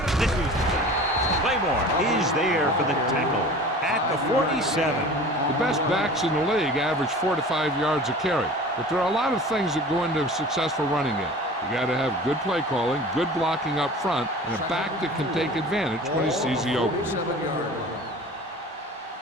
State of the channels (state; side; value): normal; both; correlation 0.40